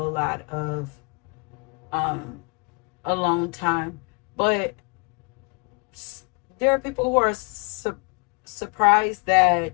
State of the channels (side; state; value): right; quieter; 33.3 dB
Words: lot of um alone time. But there are people who are surprised